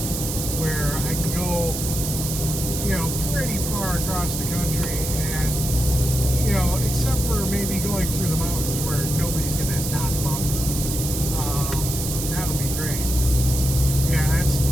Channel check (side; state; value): right; noise; hiss, 4 dB below the sound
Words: where I can go pretty far across the country, and except for maybe going through the mountains where nobody's gonna not buffer, that would be great. Yeah,